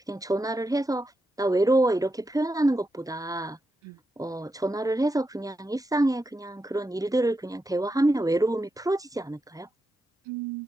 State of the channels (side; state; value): both; normal; correlation 0.86